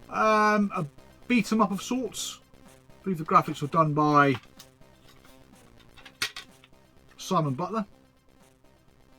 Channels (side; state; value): both; identical; correlation 1.00